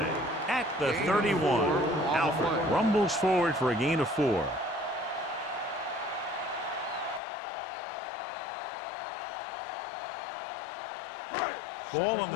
at the 31. Alford rumbles forward for a gain of 4. Ball on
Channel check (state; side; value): drops out; right; at 7.2 s